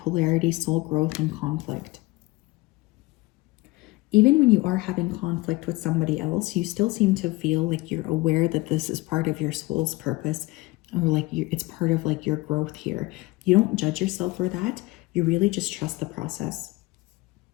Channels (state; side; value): quieter; right; 21.7 dB